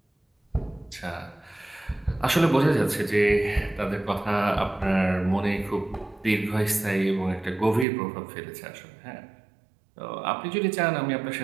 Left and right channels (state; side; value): drops out; left; at 7.9 s